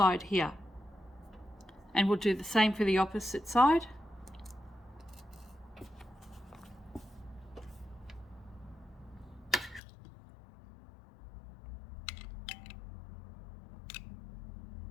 here, and we'll do the same for the opposite side.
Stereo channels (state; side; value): drops out; right; at 9.8 s